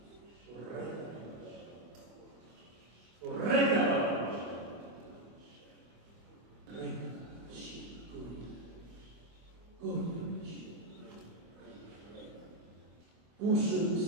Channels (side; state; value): left; late; 25 ms